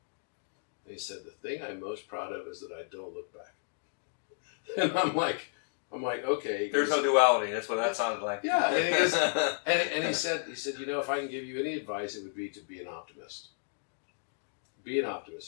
And he said, the thing I'm most proud of is that I don't look back. And I'm like, okay. There's no duality. That's what that sounded like. Yeah, and he goes, and he said, if I can give you any advice, it would be to be an optimist. Be an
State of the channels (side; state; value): right; silent; digital silence